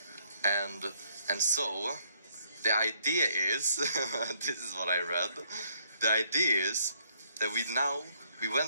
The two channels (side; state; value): both; inverted; correlation -0.68